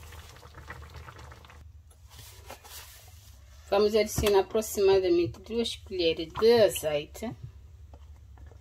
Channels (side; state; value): both; identical; correlation 1.00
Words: Vamos adicionar aproximadamente 2 colheres de azeite.